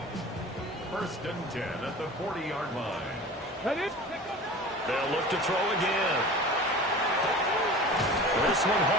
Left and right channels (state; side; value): normal; both; correlation 0.38